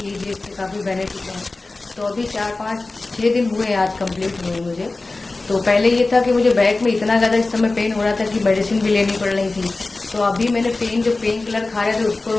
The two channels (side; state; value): right; quieter; 3.3 dB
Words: लीजिए, इससे काफ़ी बेनिफिट है। तो अभी 4-5-6 दिन हुए आज कंप्लीट हुए मुझे। तो पहले ये था कि मुझे बैक में इतना ज़्यादा इस समय पेन हो रहा था कि मेडिसिन भी लेनी पड़ रही थी। तो अभी मैंने पेन किलर खा रहे थे उसको